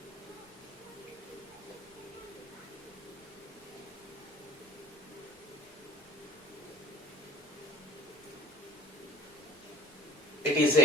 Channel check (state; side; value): normal; both; correlation 0.49